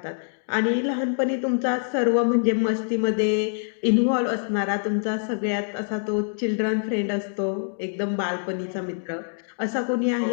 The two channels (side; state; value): right; silent; 62 dB below the other